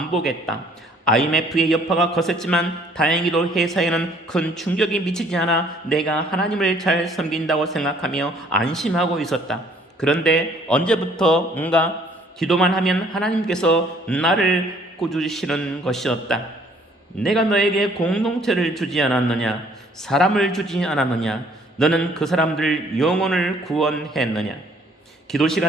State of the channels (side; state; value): both; normal; correlation 0.60